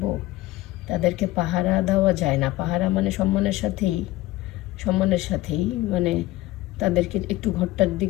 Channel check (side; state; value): right; quieter; 17.2 dB